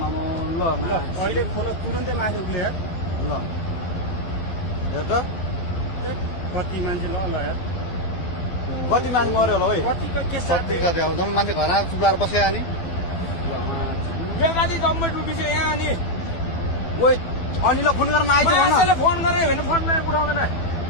अहिले खोला तुरन्तै माथि उठ्ने यार ल हेर त कति मान्छे ल यार कति मान्छे मऱ्यो होला है कतिको के कति कति अब जम्मै मान्छे घरमा चुप्लाएर बस्यो अनि बेकारी गभर्मेन्ट अफिस यहाँ अनि ओइ अनिललाई फोन गर्न आइज मान्छेले फोन गरे भने फोनमा उठाउँदैन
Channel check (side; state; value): right; late; 12 ms